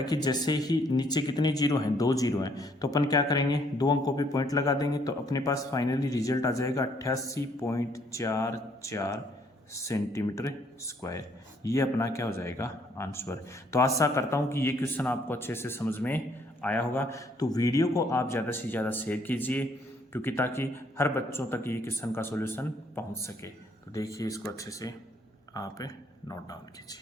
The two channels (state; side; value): normal; both; correlation 0.66